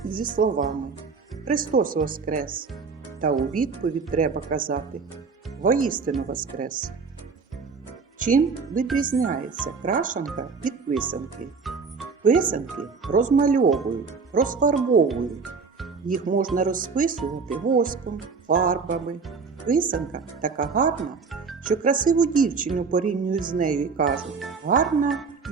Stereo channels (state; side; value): quieter; left; 5.0 dB